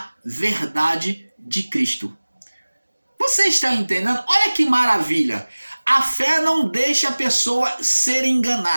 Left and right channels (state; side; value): inverted; both; correlation -1.00